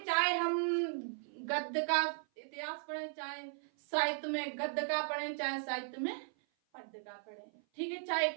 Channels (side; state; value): left; silent; 53 dB below the other